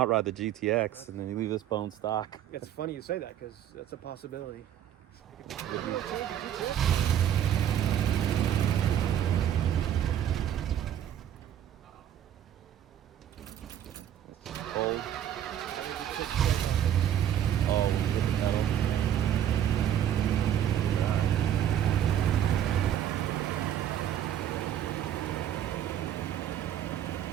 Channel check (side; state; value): left; quieter; 10.4 dB